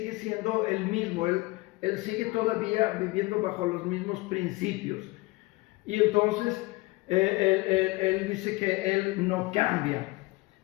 siendo el mismo. Él sigue todavía viviendo bajo los mismos principios. Y entonces él dice que Él no cambia.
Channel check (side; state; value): right; quieter; 22.1 dB